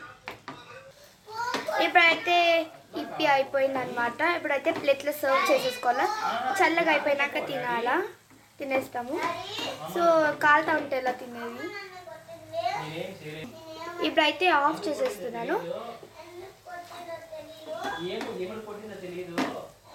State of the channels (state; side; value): identical; both; correlation 1.00